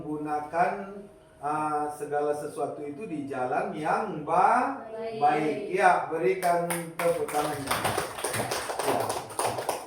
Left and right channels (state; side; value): identical; both; correlation 1.00